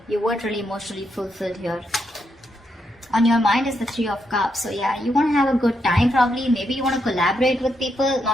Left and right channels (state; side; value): normal; both; correlation 0.81